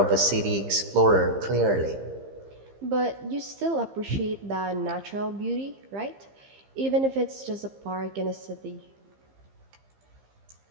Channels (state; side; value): late; left; 15 ms